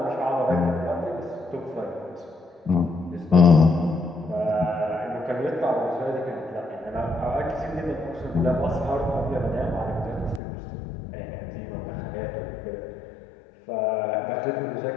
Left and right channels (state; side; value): drops out; right; at 10.4 s